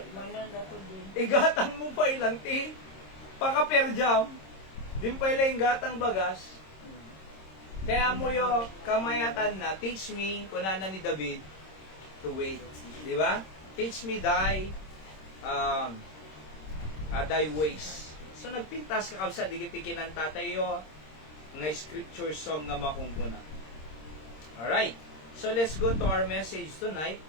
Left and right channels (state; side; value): late; right; 26 ms